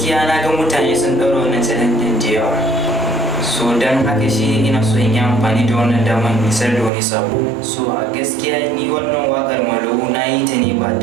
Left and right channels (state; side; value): drops out; left; at 6.9 s